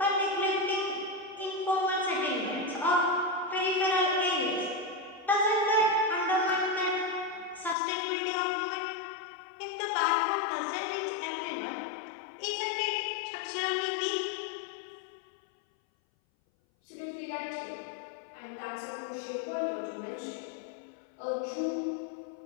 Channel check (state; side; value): drops out; right; at 7.8 s